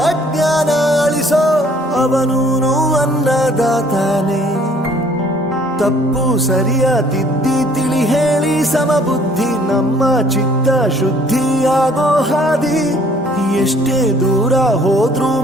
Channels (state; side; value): normal; both; correlation 0.58